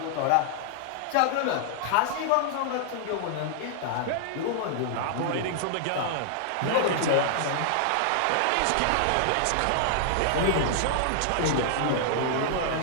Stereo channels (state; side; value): different; both; correlation 0.00